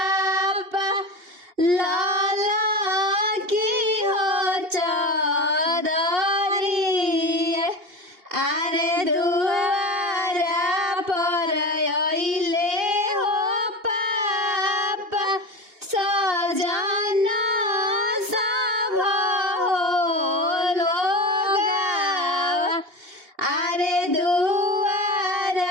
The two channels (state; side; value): late; left; 2.8 ms